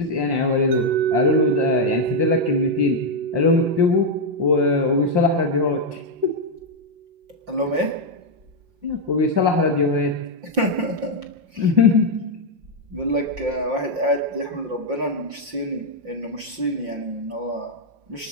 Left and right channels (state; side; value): late; left; 5.7 ms